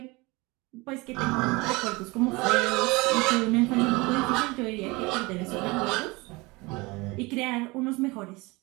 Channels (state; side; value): quieter; left; 24.1 dB